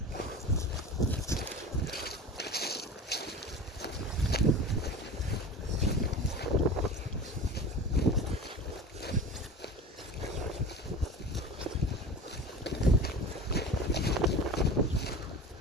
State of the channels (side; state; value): both; normal; correlation 0.34